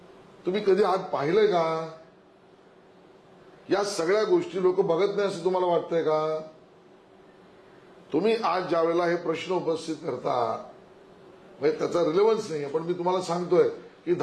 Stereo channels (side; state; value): both; identical; correlation 1.00